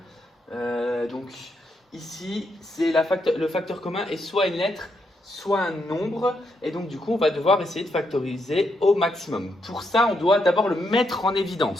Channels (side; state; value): both; normal; correlation 0.79